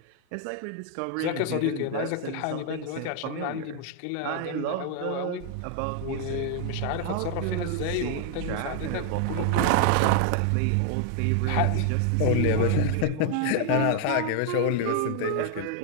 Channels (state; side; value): different; both; correlation 0.00